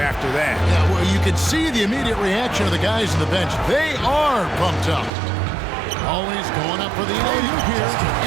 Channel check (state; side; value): drops out; left; at 5.1 s